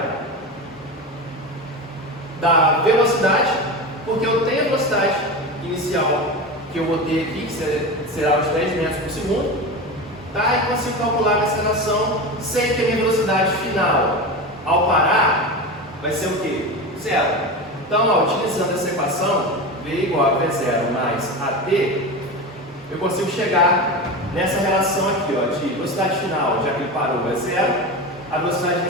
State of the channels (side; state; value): both; normal; correlation 0.24